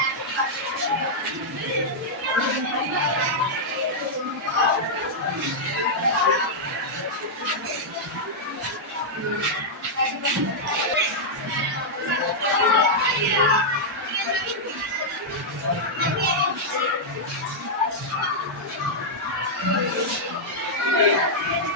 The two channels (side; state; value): both; normal; correlation -0.06